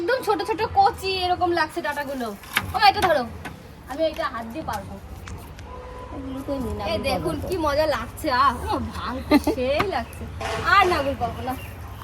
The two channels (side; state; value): both; identical; correlation 1.00